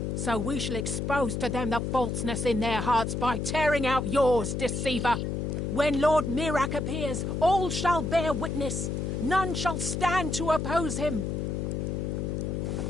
So we shall expose to them the falseness in their hearts by tearing out yours, deceiver. When Lord Mirak appears, all shall bear witness. None shall stand to oppose him.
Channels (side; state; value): left; noise; hum, 2 dB below the sound